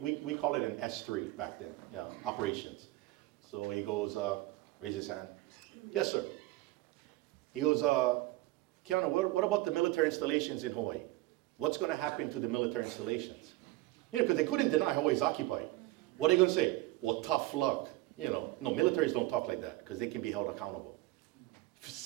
call it an S3 back then, operations. So he goes, raise his hand. Yes, sir. He goes, Keanu, what about the military installations in Hawaii? What's going to happen to the military installations? Because they couldn't deny Hawaii's occupied. What are they going to say? Well, tough luck. No, militaries don't talk like that because they can be held accountable.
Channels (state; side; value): quieter; left; 18.9 dB